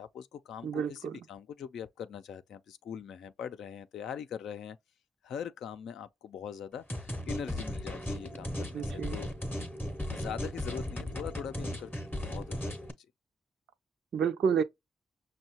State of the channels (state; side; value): normal; both; correlation 0.71